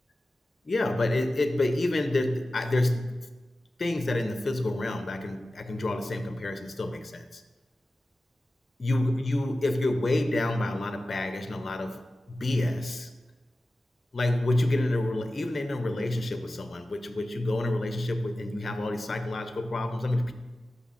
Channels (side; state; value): both; normal; correlation 0.95